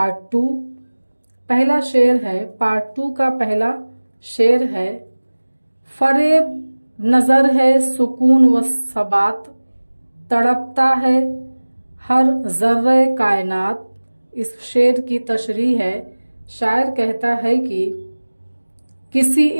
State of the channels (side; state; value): both; inverted; correlation -1.00